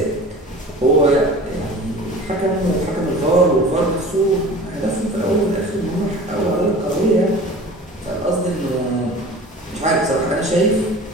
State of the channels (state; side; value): normal; both; correlation 0.40